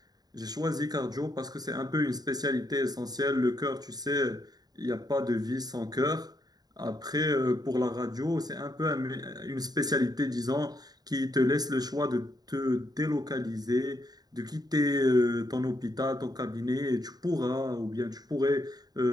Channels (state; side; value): late; left; 0.19 ms